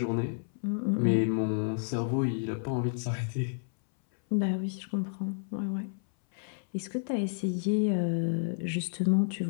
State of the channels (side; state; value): right; silent; 57 dB below the other